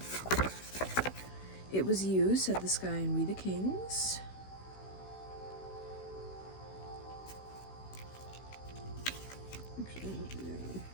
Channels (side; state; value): right; late; 16 ms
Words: It was you, said the sky and we the kings.